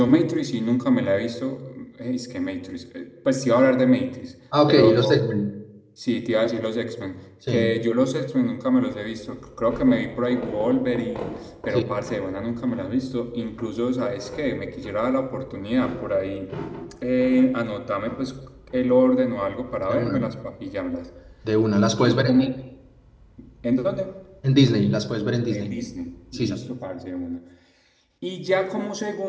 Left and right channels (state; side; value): identical; both; correlation 1.00